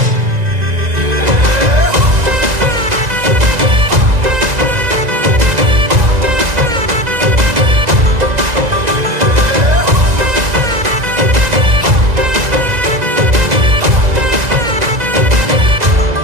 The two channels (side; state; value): left; late; 2.0 ms